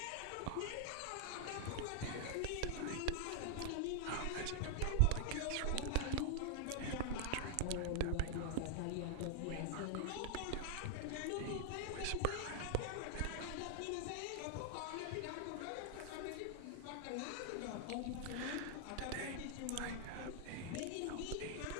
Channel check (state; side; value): different; both; correlation 0.00